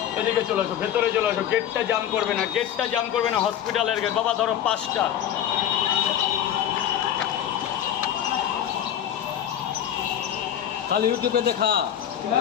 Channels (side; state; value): right; quieter; 10.3 dB